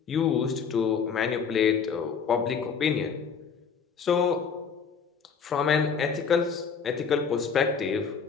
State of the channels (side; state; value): right; quieter; 6.2 dB